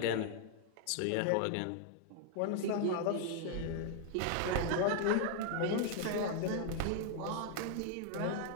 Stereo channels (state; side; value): different; both; correlation 0.00